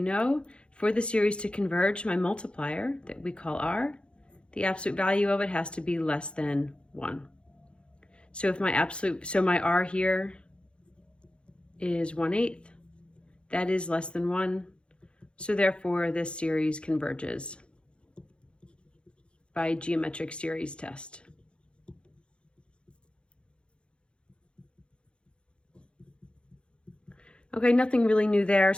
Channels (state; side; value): late; right; 0.056 ms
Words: know for the series to converge, my multiplier that we call r, the absolute value of it has to be less than 1. So if my r here is 1/8, that is less than 1. So therefore this series converges by geometric series test. Okay, nothing really new there.